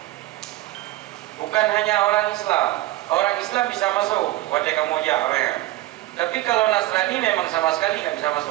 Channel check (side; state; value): left; quieter; 17.0 dB